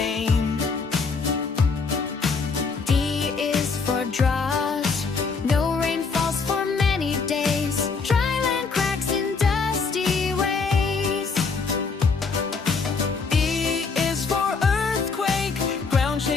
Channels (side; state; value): right; quieter; 4.8 dB